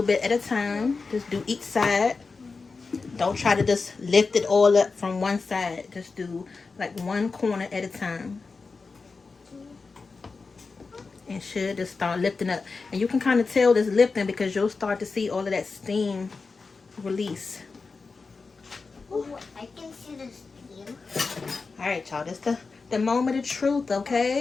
bit at a time. Just do each side. Don't try to just lift it all up from one side. Just do like one corner at a time. And should just start lifting up. And you can kind of tell this lifting because you'll start to see all of that steam release. Ooh, I can see the steam. All right, y'all. This the moment of truth,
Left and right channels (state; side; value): quieter; right; 4.4 dB